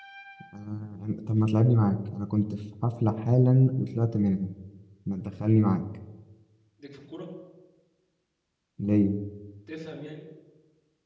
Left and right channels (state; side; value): identical; both; correlation 1.00